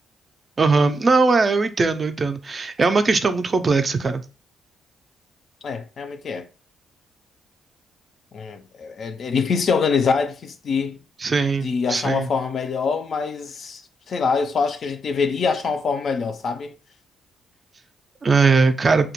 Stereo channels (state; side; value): normal; both; correlation 0.80